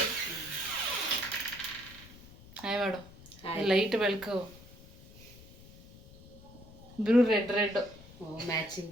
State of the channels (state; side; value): noise; left; rumble, 20 dB below the sound